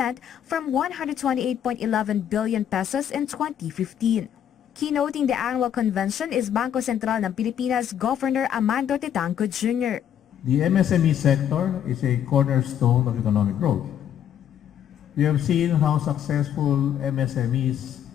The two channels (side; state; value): right; quieter; 9.7 dB